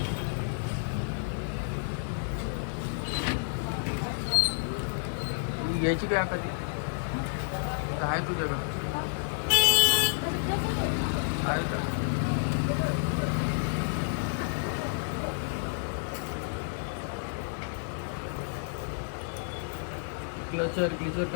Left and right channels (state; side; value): silent; right; digital silence